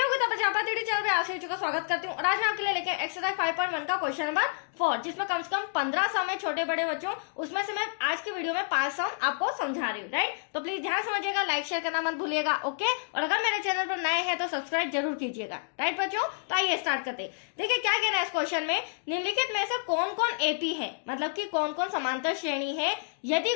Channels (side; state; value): right; silent; digital silence